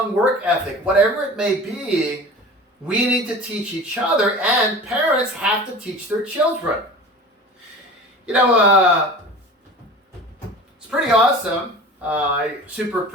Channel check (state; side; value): normal; both; correlation 0.38